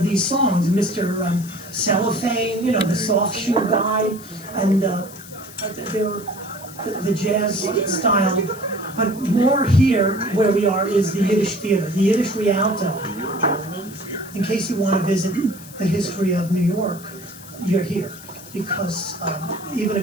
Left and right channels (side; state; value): left; noise; hiss, 18 dB below the sound